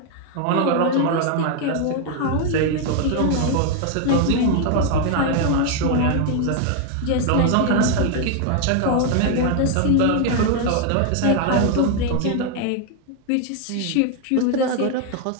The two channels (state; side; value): different; both; correlation 0.01